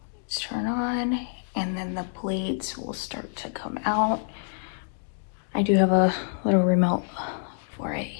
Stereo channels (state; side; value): silent; right; digital silence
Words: Let's turn on, and then the blades will start to come out. I do have a little remote for it